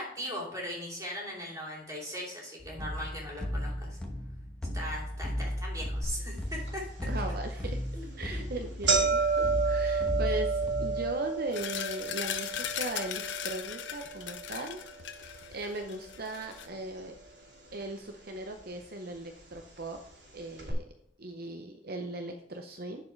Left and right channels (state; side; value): normal; both; correlation 0.30